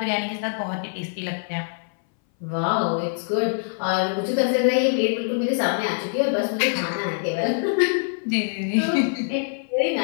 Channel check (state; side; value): silent; right; 59 dB below the other